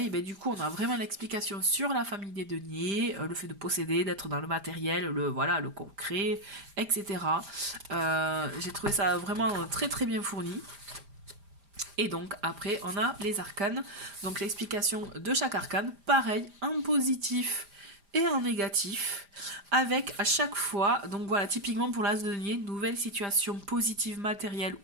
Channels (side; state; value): left; late; 5.0 ms